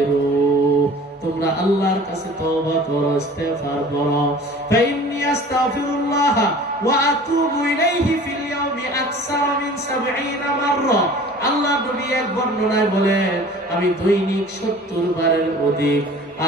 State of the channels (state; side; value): normal; both; correlation 0.45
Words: তোমরা আল্লাহর কাছে তওবা করো, ইস্তেগফার করো। ফাইন্নী আস্তাগফিরুল্লাহ ওয়া আতুবু ইলাইহি ফিল ইয়াউমি আকসার মিন 70 মাররা। আল্লাহ নবী এক বর্ণনায় বলেন আমি দৈনিক 70 বারের অধিক,